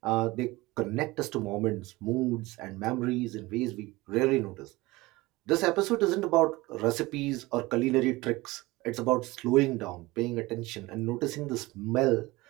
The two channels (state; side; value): quieter; left; 20.9 dB